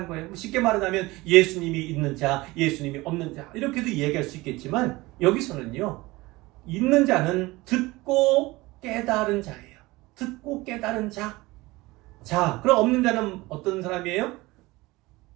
거예요. 쉽게 말하자면 예수님이 있는 자, 예수님이 없는 자, 이렇게도 이야기할 수 있겠지만 여기서는요, 있는 자는 듣고 깨달은 자예요. 듣고 깨달은 자. 자, 그럼 없는 자는 어떤 사람이에요?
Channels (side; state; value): left; quieter; 20.9 dB